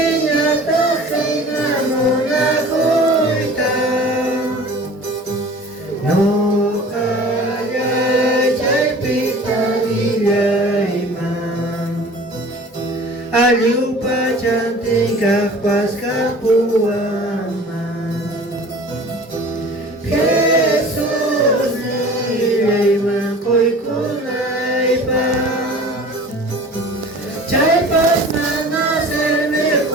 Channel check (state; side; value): normal; both; correlation 0.43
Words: kay namuna kuita. No kaya chay pitagilay man. Aliw pa cantik pas kapuaman. Jesus nilay makoy kunay pa. Chay pas manaserme